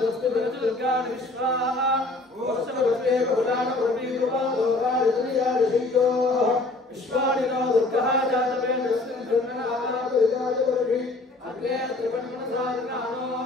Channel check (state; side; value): quieter; right; 3.0 dB